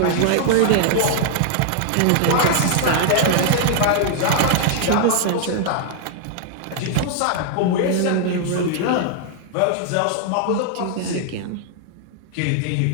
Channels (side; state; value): both; different; correlation 0.00